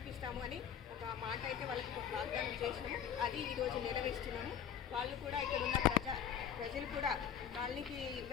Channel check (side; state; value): right; quieter; 8.8 dB